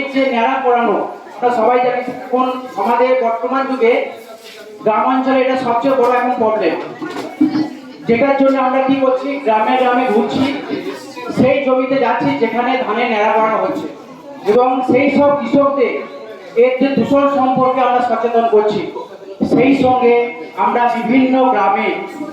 যে ন্যাড়া করানো, আমরা সবাই জানি এখন আমাদের বর্তমান যুগে গ্রামাঞ্চলে এটা সবচেয়ে বড় এখন প্রবলেম, যেটার জন্য আমরা কি করছি, গ্রামে গ্রামে ঘুরছি, সেই জমিতে যাচ্ছি যেখানে ধানের ন্যাড়া করানো হচ্ছে এবং সেই সব কৃষকদের এর যে দূষণ সম্পর্কে আমরা সচেতন করছি। সেই সঙ্গে আমরা বিভিন্ন গ্রামে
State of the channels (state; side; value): identical; both; correlation 1.00